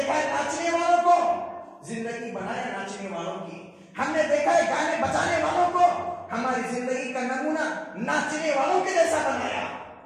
ہے ناچنے والوں کو, زندگی بنایا ناچنے والوں کی. ہم نے دیکھا ہے گانے بجانے والوں کو, ہماری زندگی کا نمونہ ناچنے والوں کے جیسا بنایا,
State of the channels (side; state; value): both; identical; correlation 1.00